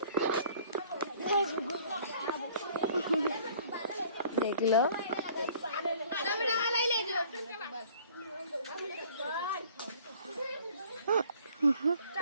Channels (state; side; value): inverted; both; correlation -0.54